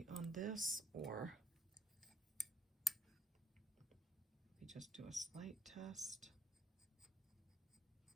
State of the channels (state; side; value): normal; both; correlation 0.53